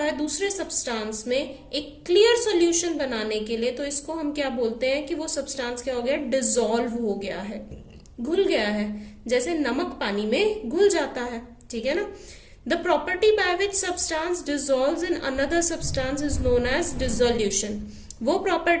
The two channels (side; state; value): both; identical; correlation 1.00